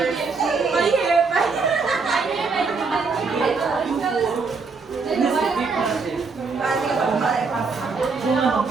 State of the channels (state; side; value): quieter; left; 4.6 dB